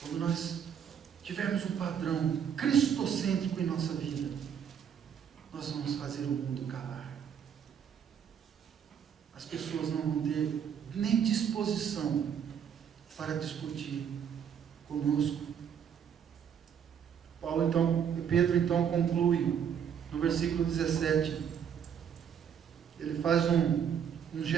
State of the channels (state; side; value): quieter; left; 8.2 dB